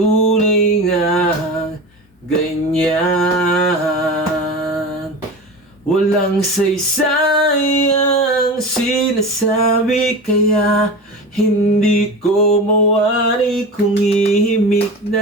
nga ganyan. Walang saysayang sinasabi, kaya hindi ko mawari kung ihimik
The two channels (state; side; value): normal; both; correlation 0.29